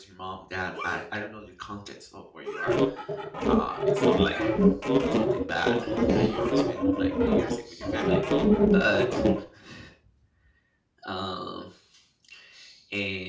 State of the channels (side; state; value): both; identical; correlation 1.00